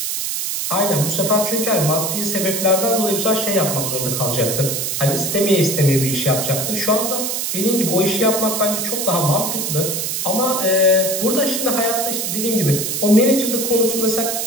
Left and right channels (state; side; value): noise; right; hiss, 2 dB below the sound